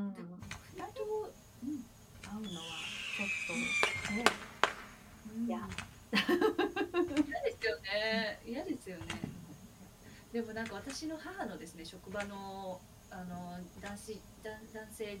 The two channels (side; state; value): both; identical; correlation 1.00